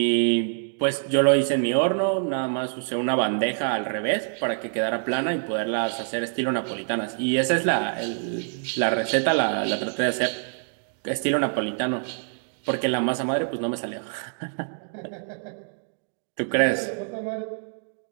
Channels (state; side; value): silent; left; digital silence